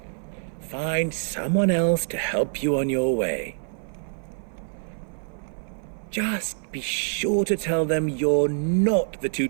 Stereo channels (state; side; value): silent; left; 57 dB below the other